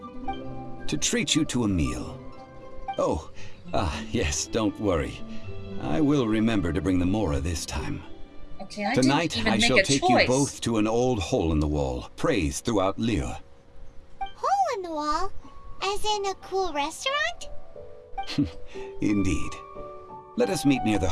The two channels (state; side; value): identical; both; correlation 1.00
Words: to treat you to a meal. Oh, yes, don't worry. I will remember to bring the Mora this time. Okay, Tonight, didn't even I make shall a take choice. you both to an old hole in the wall, praised throughout Liyue. Hole in the wall? As in a cool restaurant? Indeed. Let us meet near the